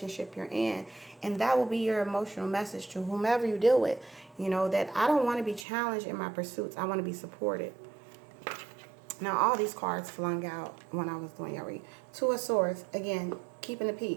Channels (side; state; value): left; drops out; at 5.7 s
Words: you're in. And that will be your emotional message to whomever you deal with, that I don't want to be challenged in my pursuits. I want to be supported. Now, all these cards flung out when I was doing your read. Two of Swords, again, keeping the